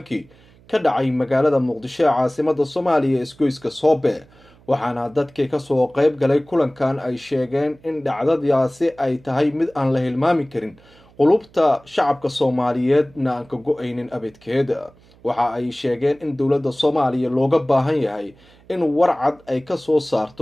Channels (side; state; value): right; noise; hum, 28 dB below the sound